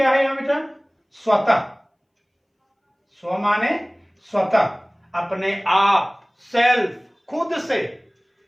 है यहां बेटा? स्वतः। स्व माने स्वतः, अपने आप, सेल्फ, खुद से।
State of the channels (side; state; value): both; identical; correlation 1.00